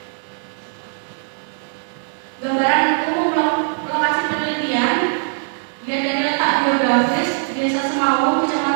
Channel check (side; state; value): left; silent; digital silence